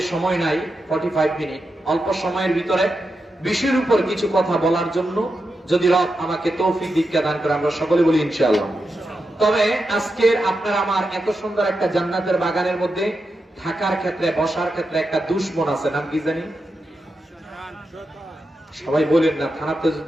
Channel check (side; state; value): both; normal; correlation 0.88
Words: সময় নাই, 45 মিনিট, অল্প সময়ের ভিতরে বিষয়ের উপর কিছু কথা বলার জন্য, যদি রব আমাকে তৌফিক দীক্ষা দান করে, আমরা সকলে বলি ইনশাআল্লাহ। তবে আজকের আপনার আমার এত সুন্দর একটা জান্নাতের বাগানের মধ্যে থাকার ক্ষেত্রে, বসার ক্ষেত্রে একটা দুশমন আছে, নাম কি জানি? সবাই বলেন না, থানাতে